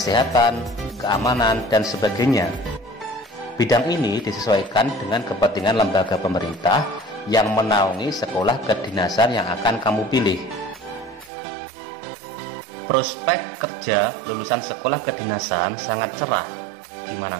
keamanan, dan sebagainya. Bidang ini disesuaikan dengan kepentingan lembaga pemerintah yang menaungi sekolah kedinasan yang akan kamu pilih. Prospek kerja lulusan sekolah kedinasan sangat cerah. Gimana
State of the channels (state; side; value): drops out; left; at 11.3 s